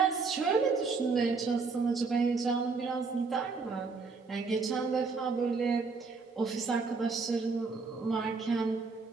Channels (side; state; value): left; quieter; 4.5 dB